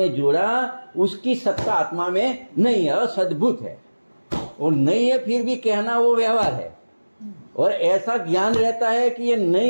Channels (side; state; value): both; inverted; correlation -1.00